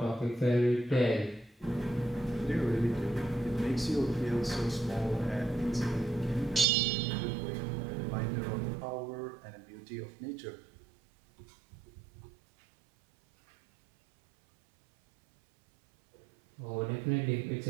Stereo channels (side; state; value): left; drops out; at 6.7 s